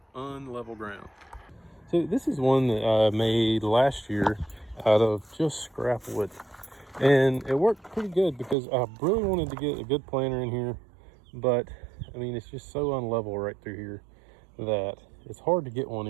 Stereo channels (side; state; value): left; drops out; at 8.6 s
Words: unlevel ground. So this is one that I made last year out of just scrap wood. And it worked pretty good because I really wanted to get a good planter in here. But I mean, it's just so unlevel right through here that it's hard to get one